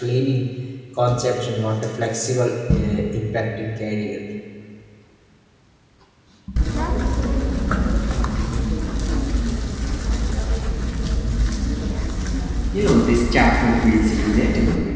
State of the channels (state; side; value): identical; both; correlation 1.00